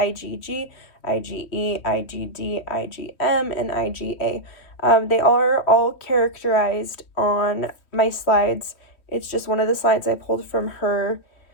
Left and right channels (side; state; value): right; late; 3.1 ms